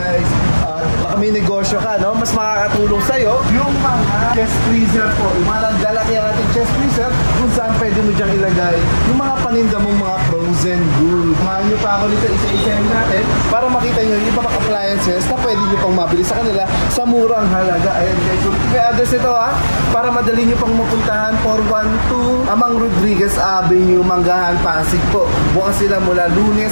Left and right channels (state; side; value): inverted; both; correlation -1.00